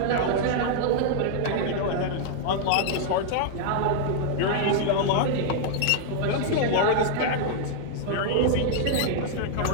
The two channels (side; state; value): both; different; correlation 0.00